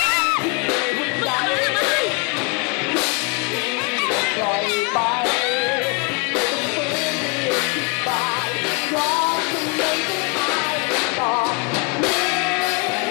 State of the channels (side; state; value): right; quieter; 30.9 dB